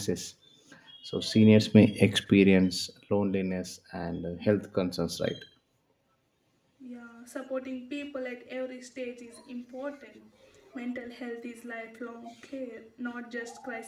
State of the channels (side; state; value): both; identical; correlation 1.00